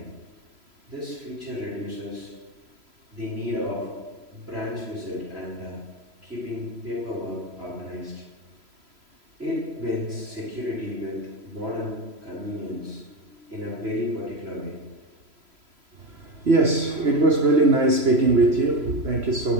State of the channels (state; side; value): late; left; 3.0 ms